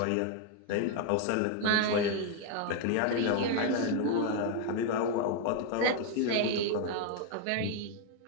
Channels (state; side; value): different; both; correlation 0.01